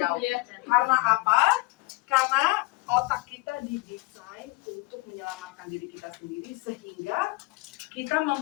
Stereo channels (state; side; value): quieter; right; 22.9 dB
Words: Karena apa? Karena otak kita didesain untuk menyelamatkan diri kita sendiri, sehingga kita